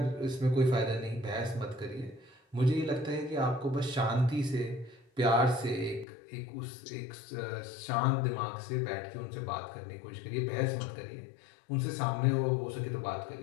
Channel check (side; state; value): right; drops out; at 6.1 s